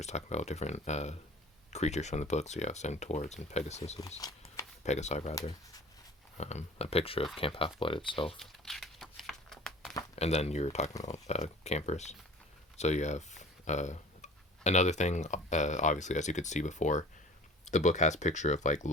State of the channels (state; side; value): normal; both; correlation 0.44